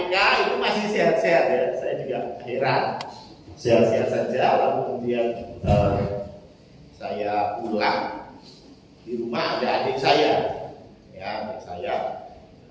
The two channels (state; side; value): identical; both; correlation 1.00